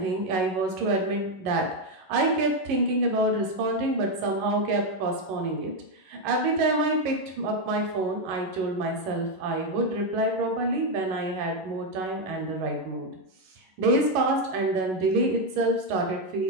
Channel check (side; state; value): left; late; 11 ms